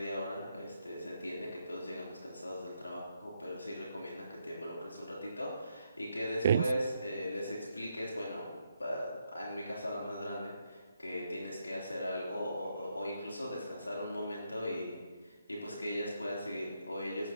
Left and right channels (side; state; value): both; inverted; correlation -0.79